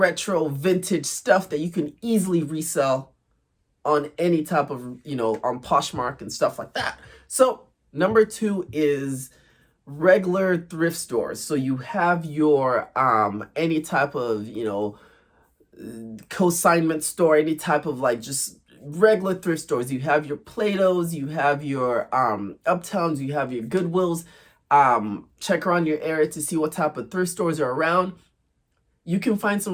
vintage stuff that you can easily resell on any type of on Poshmark and stuff like that. So Number 2 is regular thrift stores. So you have your any type of, you know, consignment store, any type of like just regular thrift stores. You have your Plato's, you have your Uptowns, you have your Goodwills. Check around your area to see what type of thrift stores are around. You can find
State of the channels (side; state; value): both; identical; correlation 1.00